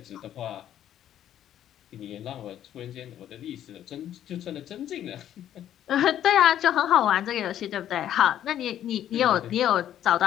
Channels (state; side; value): quieter; right; 11.1 dB